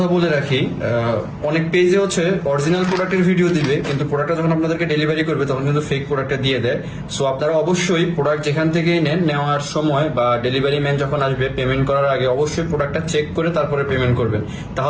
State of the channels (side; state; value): both; identical; correlation 1.00